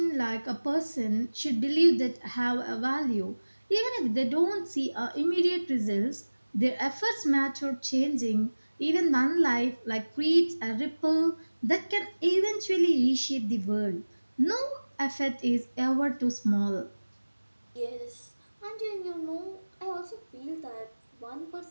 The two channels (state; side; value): inverted; both; correlation -1.00